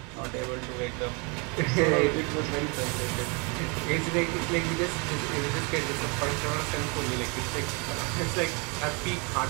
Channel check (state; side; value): quieter; left; 31.6 dB